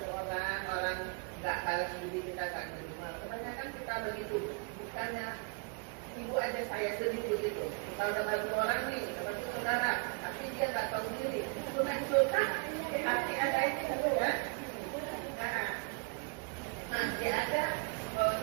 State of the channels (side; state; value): left; quieter; 33.0 dB